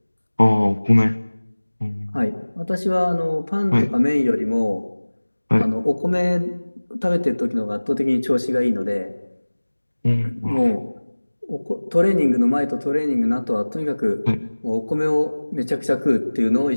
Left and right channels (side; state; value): both; inverted; correlation -1.00